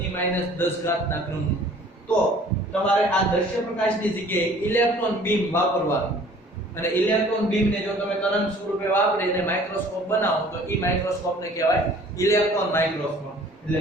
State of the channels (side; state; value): both; normal; correlation 0.52